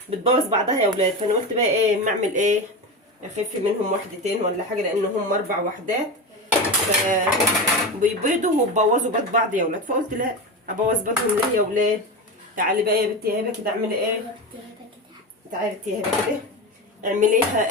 بتبوظ بعضها يا ولاد، فانا قلت بقى ايه اما اعمل ايه، اخف منهم واحدتين ولا حاجه، لان هم 4 وحدات فبيبيضوا وبوظوا بيض بعض يا ولاد، فقلت لا ابوظ بيضهم ليه يا ولاد. تعالي بقى يا بنتي يا هبه كده اعملي ايه، تعالي يا بنتي يا هبه كده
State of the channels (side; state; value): both; normal; correlation 0.21